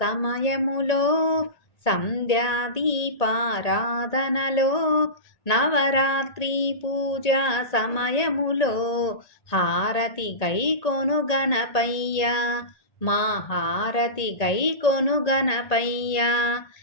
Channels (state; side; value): late; right; 1.8 ms